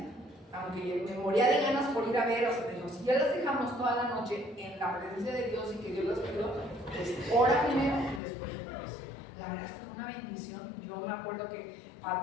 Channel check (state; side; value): drops out; right; at 8.2 s